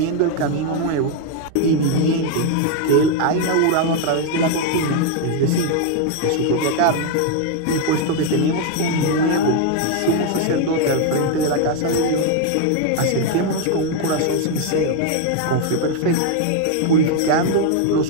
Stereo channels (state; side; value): different; both; correlation 0.00